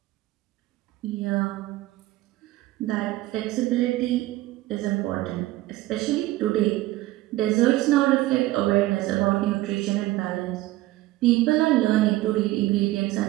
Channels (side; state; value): left; quieter; 17.2 dB